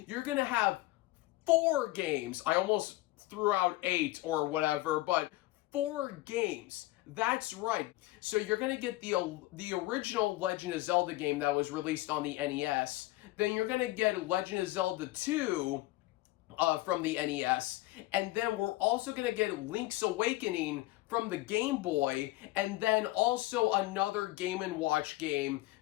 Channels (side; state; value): right; quieter; 18.2 dB